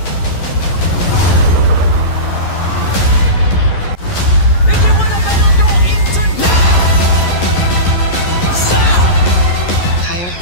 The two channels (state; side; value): late; right; 11 ms